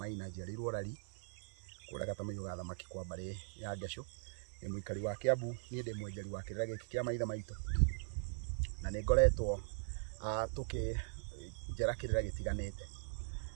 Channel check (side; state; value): left; silent; 51 dB below the other